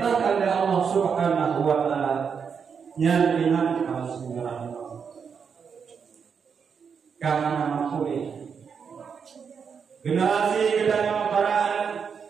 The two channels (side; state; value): left; quieter; 6.4 dB